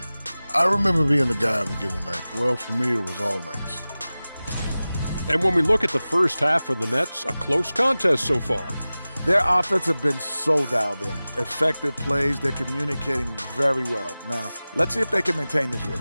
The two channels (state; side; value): inverted; both; correlation -0.97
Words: I remember being the guy on a given night. Well, for me, it was all nights. And when we look at the first half for the Nets, a close contest so far. Their offense have been so dialed in. Effective plays, they're communicating very well. Now, let's see if they can maintain this